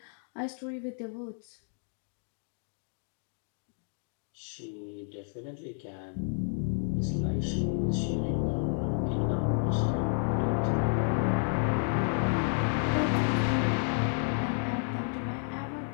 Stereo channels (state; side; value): silent; right; 57 dB below the other